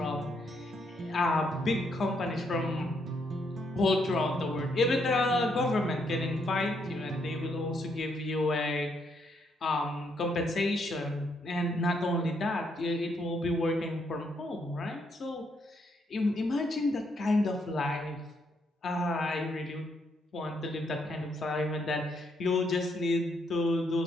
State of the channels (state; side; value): normal; both; correlation 0.75